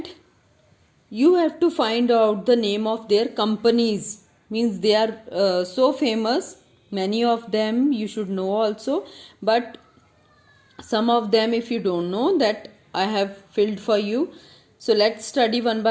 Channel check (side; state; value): both; identical; correlation 1.00